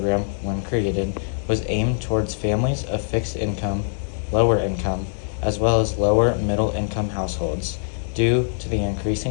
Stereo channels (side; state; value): right; silent; digital silence